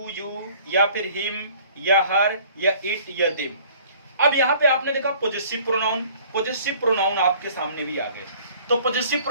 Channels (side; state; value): both; inverted; correlation -0.53